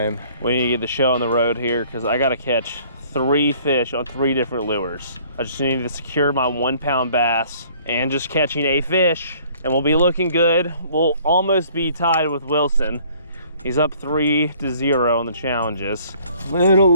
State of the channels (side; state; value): both; inverted; correlation -0.57